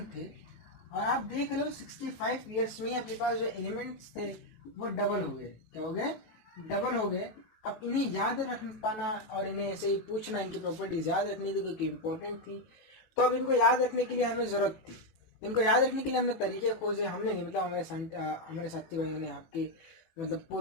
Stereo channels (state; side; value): late; right; 18 ms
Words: थे। और आप देख रहे हो 65 ईयर्स में अपने पास जो एलिमेंट्स थे वो डबल हो गए। क्या हो गए? डबल हो गए। अब इन्हें याद रख पाना और इन्हें ऐसे ही पूछना, इनकी प्रॉपर्टीज याद रखनी थी क्योंकि इंपॉर्टेंट थी। तो अब इनको याद रखने के लिए हमें जरूरत थी। इनको याद रखने के लिए हमने तरीके खोजे। हमने नहीं, मतलब हमारे साथी भाइयों ने, आपके मतलब